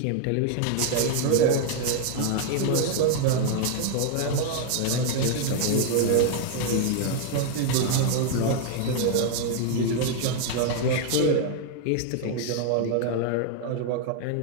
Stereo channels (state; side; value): different; both; correlation 0.00